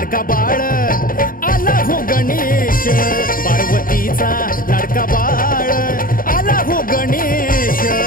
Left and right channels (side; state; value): right; late; 0.41 ms